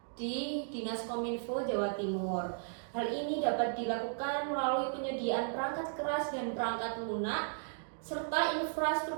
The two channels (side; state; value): left; silent; digital silence